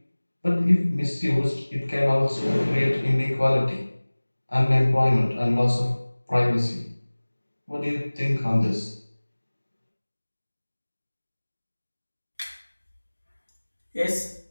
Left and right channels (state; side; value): inverted; both; correlation -1.00